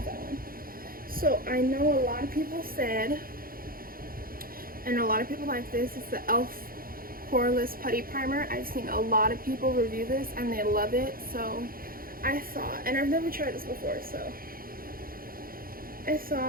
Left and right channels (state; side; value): late; left; 0.42 ms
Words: that one. So I know a lot of people said, and a lot of people like this, it's the e.l.f. Poreless Putty Primer. I've seen a lot of people review this and they love it, so I thought, and I've never tried this before, so I